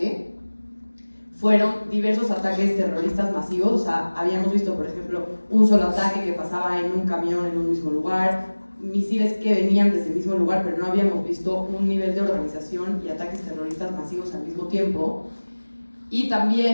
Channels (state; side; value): inverted; both; correlation -1.00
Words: Fueron diversos ataques terroristas masivos. O sea, habíamos visto, por ejemplo, un solo ataque que pasaba en un camión en un mismo lugar, misiles que venían desde el mismo lugar, pero no habíamos visto un nivel de organización y ataques terroristas masivos al mismo tiempo. Y